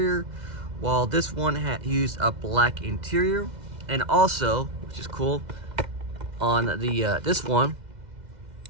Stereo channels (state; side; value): late; left; 2.0 ms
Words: while this one used a black interior. And also, which is cool, on the this one